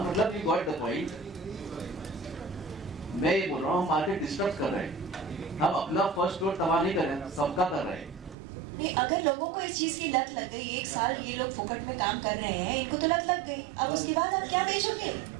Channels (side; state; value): left; drops out; at 8.3 s